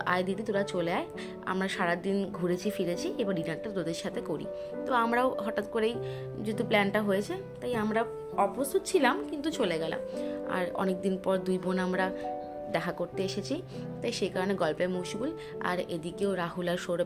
আয় দিদি তোরা চলে আয়, আমরা সারাদিন ঘুরেছি ফিরেছি, এবার ডিনারটা তোদের সাথে করি। তো আমরাও হঠাৎ করেই যেহেতু প্ল্যানটা হয়েছে, তাই আমরা অপ্রস্তুত ছিলাম, কিন্তু চলে গেলাম। আর অনেকদিন পর দুই বোন আমরা দেখা করতে এসেছি, তাই সেই কারণে গল্পে মশগুল। আর এদিকেও রাহুল আর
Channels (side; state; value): both; identical; correlation 1.00